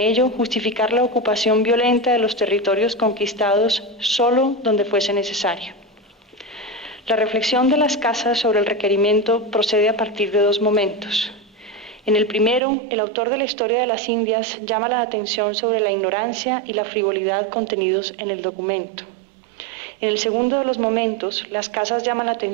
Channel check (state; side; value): drops out; left; at 12.6 s